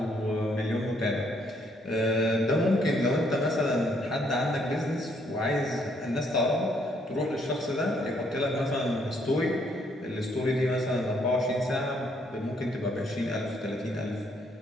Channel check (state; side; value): normal; both; correlation 0.69